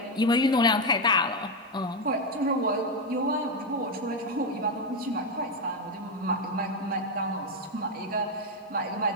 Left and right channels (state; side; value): normal; both; correlation 0.08